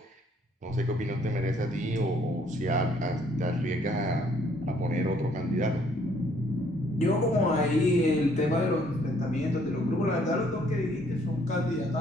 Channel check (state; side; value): normal; both; correlation 0.64